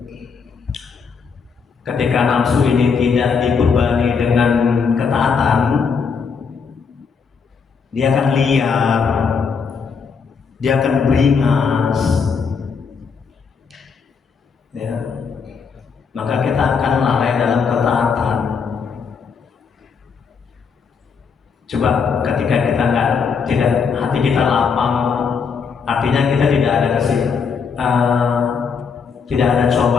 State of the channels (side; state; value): right; quieter; 5.8 dB